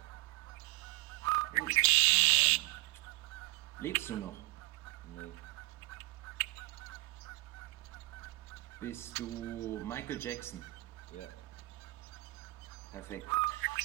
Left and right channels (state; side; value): quieter; left; 21.3 dB